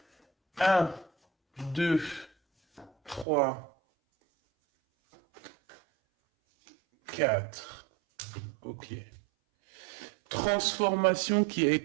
1, 2, 3, 4. Ok. Transformation qui a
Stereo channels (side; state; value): left; drops out; at 3.2 s